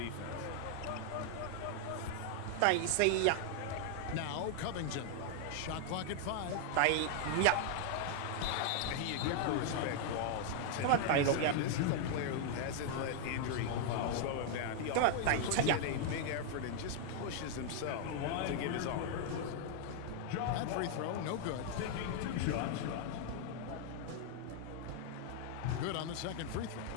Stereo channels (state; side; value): different; both; correlation 0.00